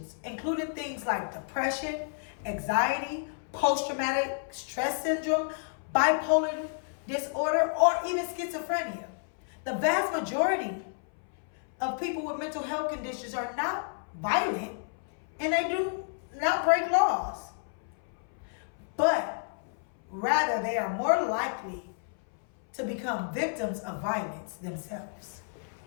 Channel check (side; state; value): right; silent; 57 dB below the other